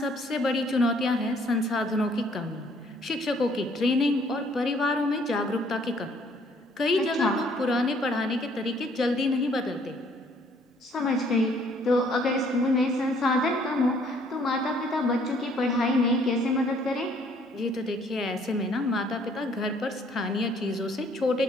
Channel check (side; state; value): both; normal; correlation 0.62